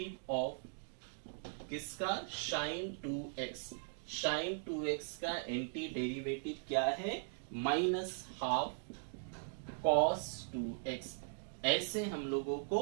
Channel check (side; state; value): left; silent; digital silence